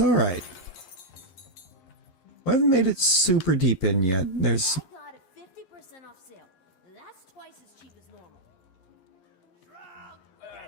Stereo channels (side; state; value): right; late; 11 ms